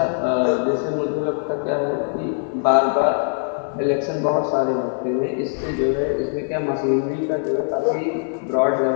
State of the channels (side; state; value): right; silent; digital silence